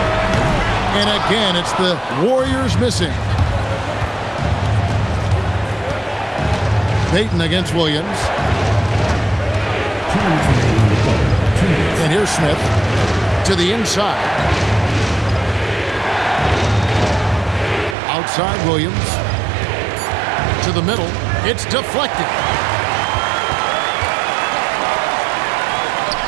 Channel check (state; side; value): drops out; left; at 17.9 s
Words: And again, it's the Warriors missing. Payton against Williams. And here's Smith to the inside. Outside Williams. To the middle. It's deflected.